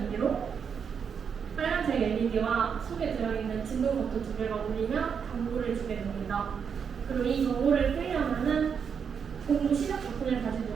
의미로 빨간색 LED와 속에 들어있는 진동 버튼 두 개가 울리면 경고를 주게 됩니다. 그리고 이 경고를 끄려면은 공부 시작 버튼을 다시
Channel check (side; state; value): left; quieter; 6.8 dB